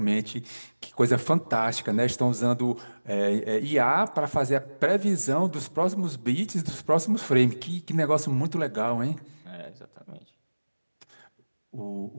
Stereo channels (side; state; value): both; inverted; correlation -1.00